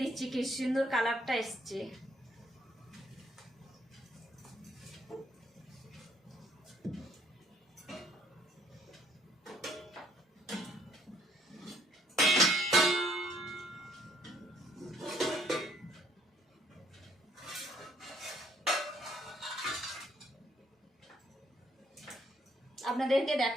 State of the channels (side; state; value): both; normal; correlation 0.67